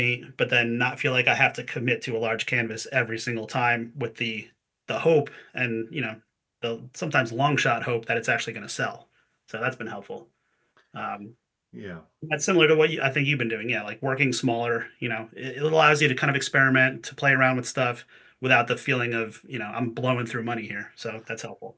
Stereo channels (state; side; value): identical; both; correlation 1.00